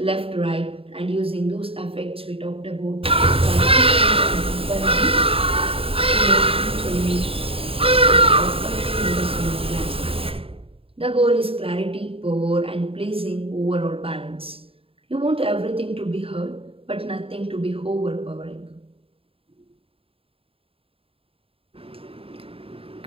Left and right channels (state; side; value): late; left; 0.27 ms